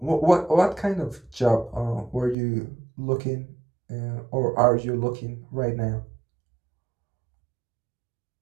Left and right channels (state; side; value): drops out; left; at 2.4 s